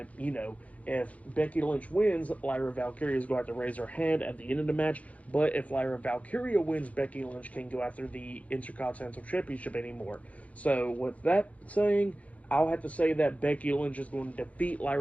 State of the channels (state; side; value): late; right; 0.067 ms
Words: you know, if Becky Lynch wins, Lyra Valkyria is going to have to raise her hand at the end of the match. But if Lyra Valkyria wins, Becky Lynch can't go after the Intercontinental Championship anymore. So with that saying, I'll have to say that Becky Lynch is going to defeat